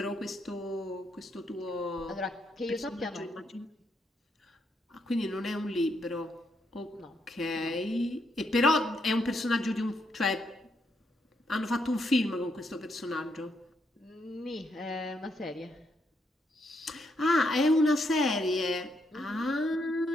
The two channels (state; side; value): normal; both; correlation 0.77